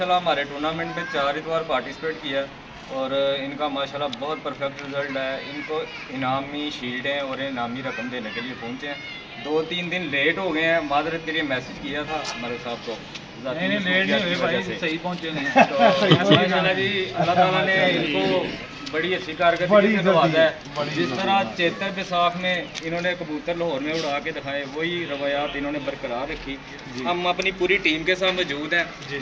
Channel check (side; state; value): both; identical; correlation 1.00